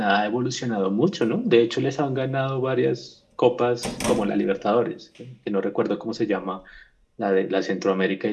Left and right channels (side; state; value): both; identical; correlation 1.00